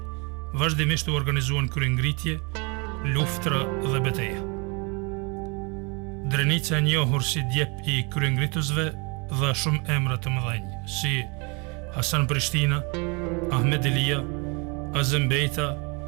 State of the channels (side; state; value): left; quieter; 31.0 dB